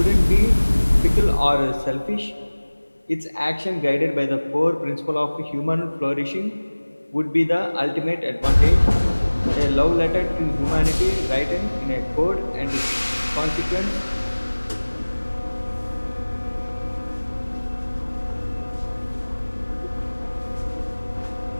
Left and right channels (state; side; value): inverted; both; correlation -1.00